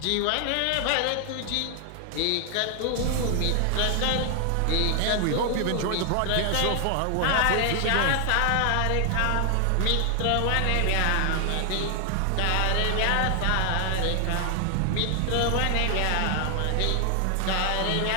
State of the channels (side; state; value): both; different; correlation 0.00